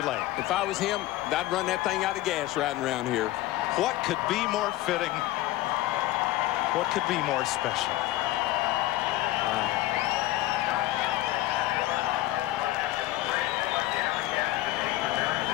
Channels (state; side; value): quieter; right; 16.4 dB